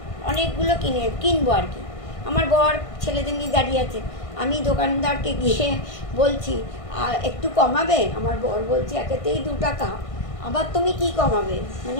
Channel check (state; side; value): late; right; 1.6 ms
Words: অনেকগুলো কিনবো আর কি। আমার বর ছেলেদের নিয়ে দাঁড়িয়ে আছে, আমি দোকানদারকে গিয়ে বলছি একটু কমাবে, আমার বর বলছে একেতেই 2 টাকা, আবার তুমি কি কমাবে, মানে